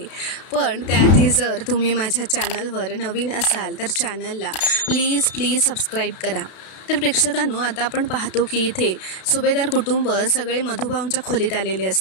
पण त्याआधी जर तुम्ही माझ्या चॅनलवर नवीन असाल तर चॅनलला प्लीज सबस्क्राईब करा. तर प्रेक्षकांनो, आता आपण पाहतो की इथे सुभेदार कुटुंब सगळे मधुभाऊंच्या खोलीत आलेले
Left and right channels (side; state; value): right; late; 32 ms